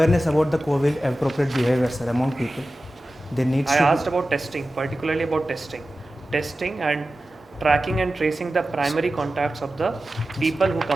about the COVID appropriate behavior, sir, among people. There needs I to asked about testing, particularly about testing and tracking and tracing the primary contacts of the people who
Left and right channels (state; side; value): normal; both; correlation 0.94